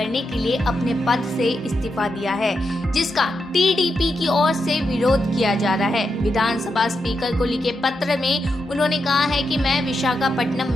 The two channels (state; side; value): normal; both; correlation 0.85